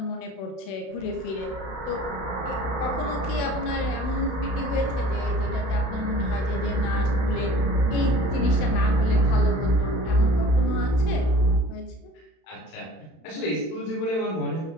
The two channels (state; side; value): late; right; 31 ms